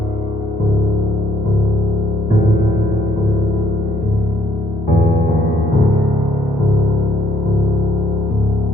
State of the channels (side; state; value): both; normal; correlation 0.65